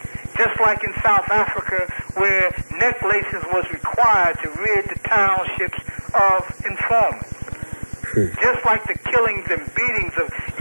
Just like in South Africa, where necklaces was required to rid the townships of informants. Just like the killings and beatings of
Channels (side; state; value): both; inverted; correlation -1.00